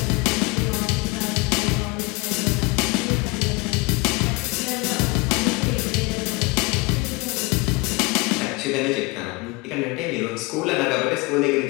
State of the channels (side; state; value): right; quieter; 25.9 dB